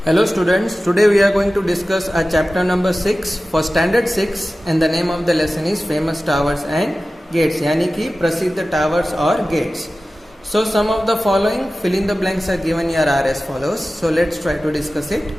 Hello students, today we are going to discuss our chapter number 6 for standard 6 and the name of the lesson is famous towers and gates यानी कि प्रसिद्ध towers और gates. So some of the following fill in the blanks are given here are as follows. So let's try to discuss it.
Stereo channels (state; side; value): normal; both; correlation 0.95